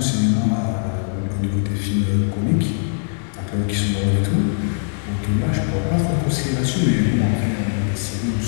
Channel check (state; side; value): silent; right; digital silence